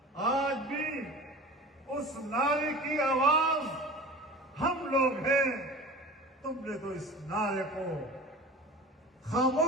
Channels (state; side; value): normal; both; correlation 0.37